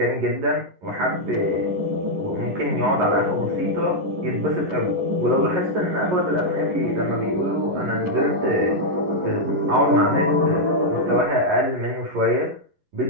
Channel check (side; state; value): left; late; 11 ms